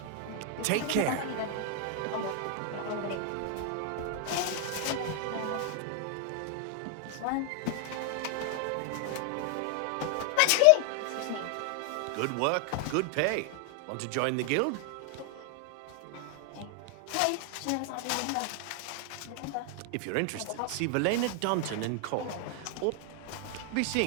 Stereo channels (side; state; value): both; different; correlation 0.00